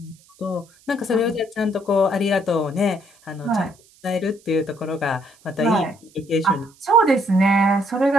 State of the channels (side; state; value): right; noise; hiss, 29 dB below the sound